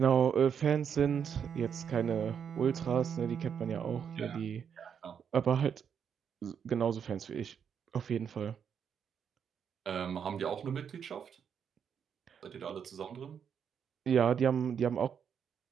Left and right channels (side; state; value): left; quieter; 7.6 dB